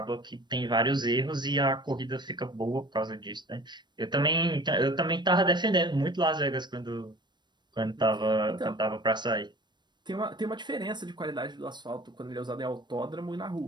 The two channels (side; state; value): left; late; 0.22 ms